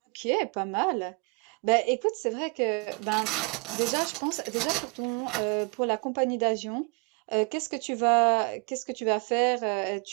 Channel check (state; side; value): quieter; left; 30.8 dB